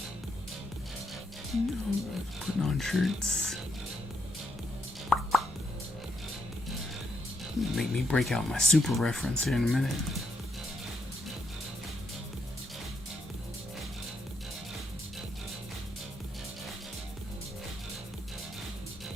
No, putting on shirts. Make me break out my super reference here in a minute.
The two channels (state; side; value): normal; both; correlation 0.78